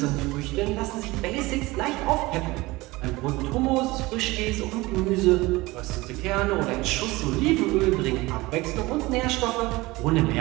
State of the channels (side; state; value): left; quieter; 21.0 dB